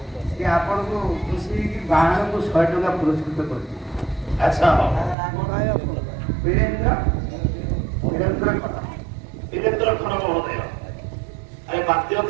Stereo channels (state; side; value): drops out; left; at 5.2 s